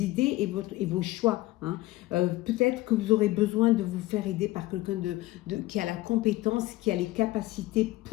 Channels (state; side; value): quieter; right; 18.3 dB